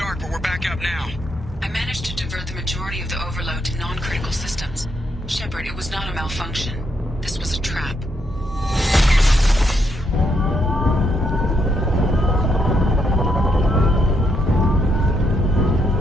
but we're back up now. I managed to divert the majority of the overload to non-critical systems. Shepard, it was not a malfunction. This was a trap.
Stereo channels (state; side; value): normal; both; correlation 0.77